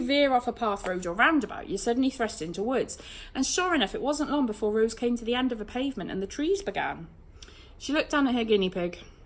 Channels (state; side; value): identical; both; correlation 1.00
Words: veer off a path, road or roundabout, you're suddenly thrust into woods. And sure enough, it wasn't long before Rose came to the end of a pavement and the trees began. She looked down at her guinea pig.